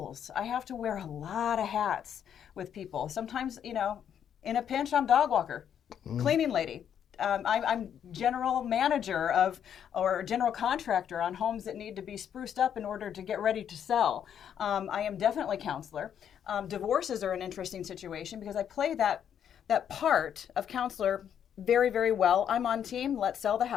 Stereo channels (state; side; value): quieter; right; 8.9 dB